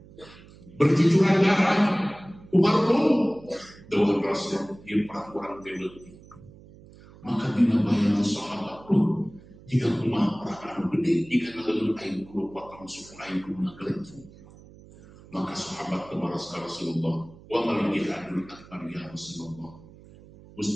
berjujuran darah Umar pun dawuh Rasul ieu perang urang teh leutik maka dina bayangan sahabat pun jika kumaha perang anu gede jika naleun aing kudu potong suku aing kudu nagelencung maka sahabat kebaras ka Rasulullah wa mal jihadul akbar ya Rasulullah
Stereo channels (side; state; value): right; noise; hum, 22 dB below the sound